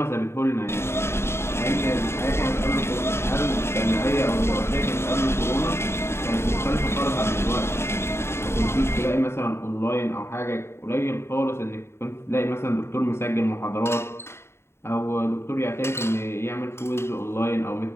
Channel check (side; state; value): right; late; 0.12 ms